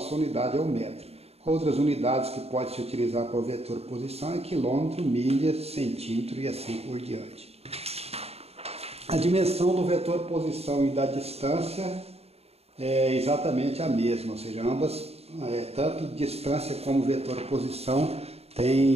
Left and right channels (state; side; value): late; left; 0.30 ms